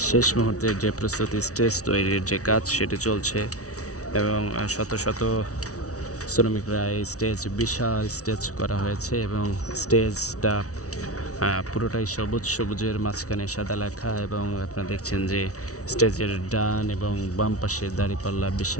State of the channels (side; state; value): right; late; 0.66 ms